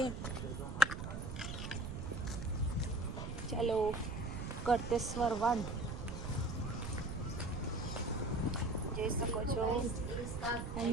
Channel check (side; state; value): right; noise; rumble, 6 dB below the sound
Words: ચાલો, કરતેશ્વર વન જોઈ શકો છો.